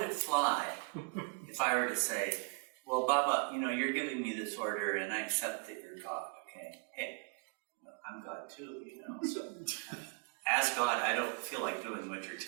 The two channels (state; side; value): quieter; left; 36.3 dB